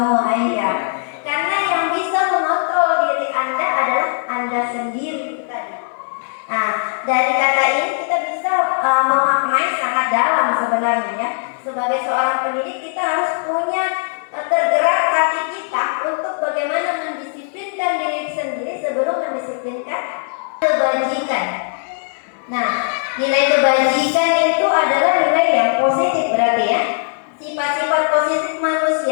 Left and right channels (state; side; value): silent; right; 67 dB below the other